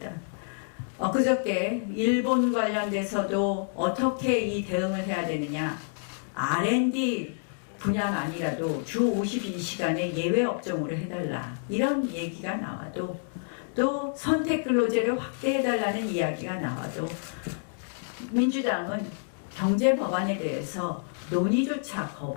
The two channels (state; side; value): silent; right; digital silence